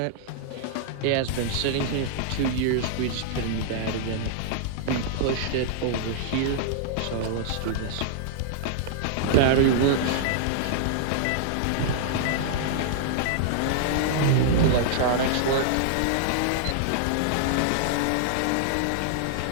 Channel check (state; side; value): different; both; correlation -0.01